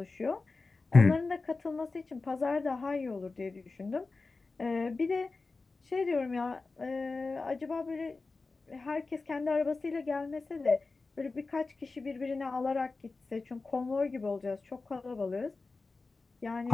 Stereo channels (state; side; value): quieter; right; 3.8 dB